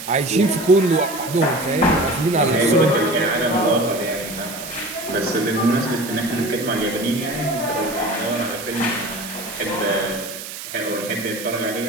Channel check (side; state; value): right; noise; hiss, 10 dB below the sound